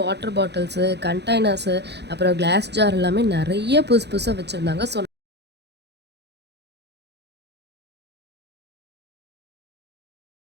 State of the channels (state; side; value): late; left; 0.49 ms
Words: வாட்டர் பாட்டில்ஸு, கண்டெய்னர்ஸு, அப்புறம் கிளாஸ் ஜார் எல்லாமே நிறைய புதுசாக வச்சுருந்தாங்க. ஸோ